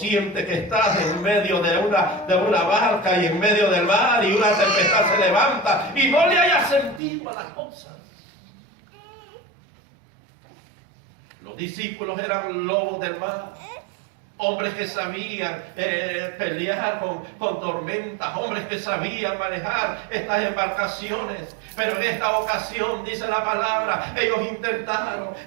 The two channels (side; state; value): left; drops out; at 7.0 s